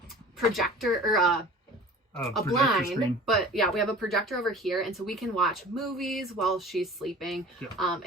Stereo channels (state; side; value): normal; both; correlation 0.42